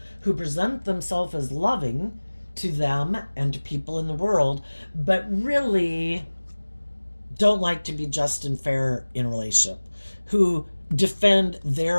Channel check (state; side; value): inverted; both; correlation -1.00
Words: who present themselves as loving to them and to people in the world, but really don't like to be just and fair in a relationship, who defend